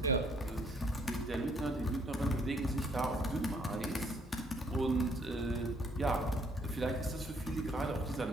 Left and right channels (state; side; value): normal; both; correlation 0.66